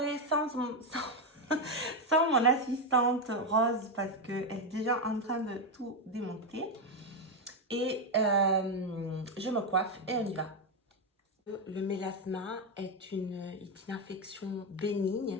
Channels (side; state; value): both; normal; correlation 0.06